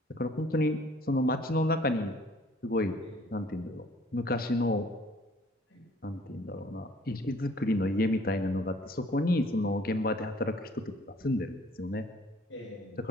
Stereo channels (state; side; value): normal; both; correlation 0.57